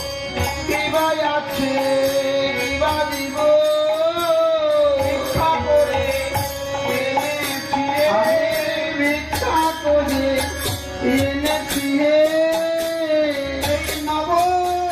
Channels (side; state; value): both; identical; correlation 1.00